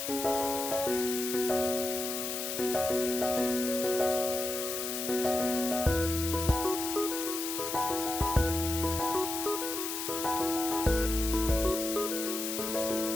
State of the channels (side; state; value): left; noise; hiss, 4 dB below the sound